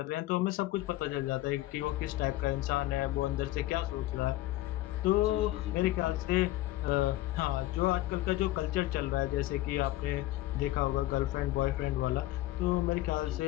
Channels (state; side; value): quieter; right; 16.2 dB